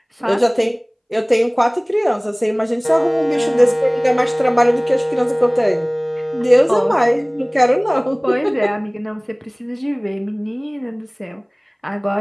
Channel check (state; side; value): identical; both; correlation 1.00